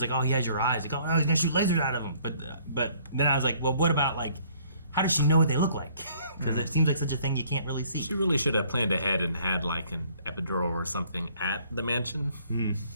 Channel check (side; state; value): both; inverted; correlation -0.60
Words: oh, he has your eyes. Like, oh, no, he's gonna shoot lasers out of him. But then I was like, well, what about like, how does she know what they look like? Because it seems like such a thing you can't really see. She really should have planned ahead and had like an epidural or something at the mansion. Ooh,